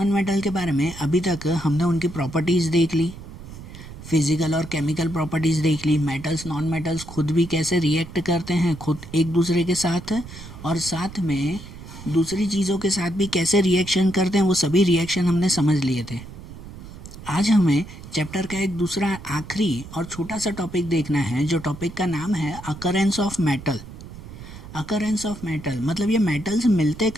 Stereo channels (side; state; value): right; noise; rumble, 14 dB below the sound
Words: मेटल के बारे में अभी तक हमने उनकी प्रॉपर्टीज़ देख ली, फिजिकल और केमिकल प्रॉपर्टीज़ देख ली, मेटल्स नॉन मेटल्स खुद भी कैसे रिएक्ट करते हैं खुद एक दूसरे के साथ, और साथ में दूसरी चीज़ों के साथ भी कैसे रिएक्शन करते हैं, वो सभी रिएक्शन हमने समझ लिए थे। आज हमें चैप्टर का एक दूसरा आखिरी और छोटा सा टॉपिक देखना है, जो टॉपिक का नाम है occurrence of metal. Occurrence of metal मतलब ये मेटल्स मिलते